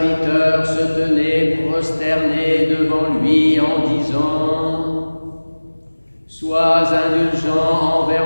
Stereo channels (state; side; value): inverted; both; correlation -1.00